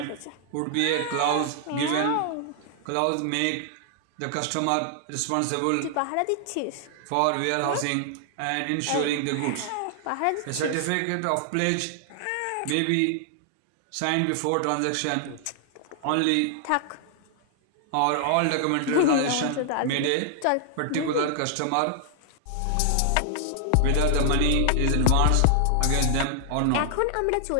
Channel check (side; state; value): both; different; correlation 0.00